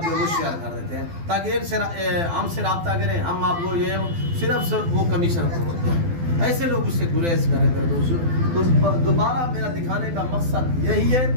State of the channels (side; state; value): left; late; 12 ms